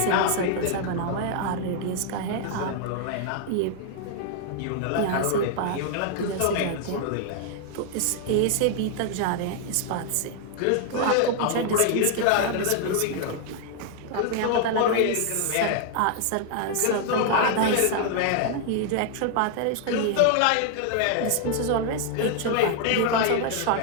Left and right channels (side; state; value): both; different; correlation 0.00